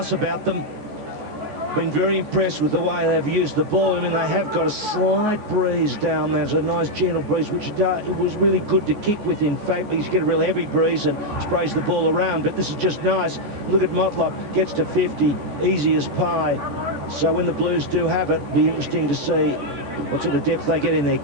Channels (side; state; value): left; late; 14 ms